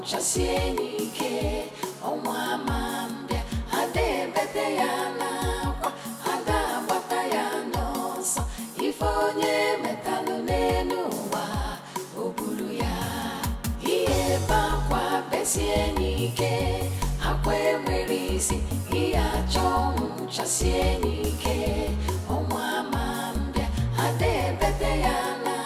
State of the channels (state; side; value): identical; both; correlation 1.00